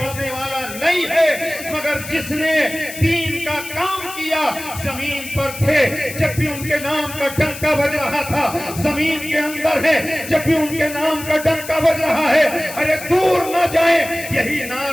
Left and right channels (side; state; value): left; noise; hiss, 12 dB below the sound